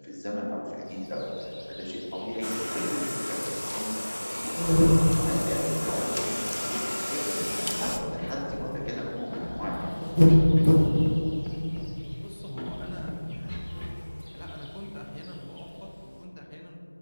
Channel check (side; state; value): both; inverted; correlation -1.00